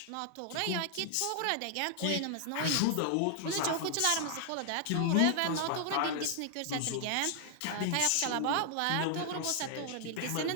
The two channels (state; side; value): different; both; correlation 0.00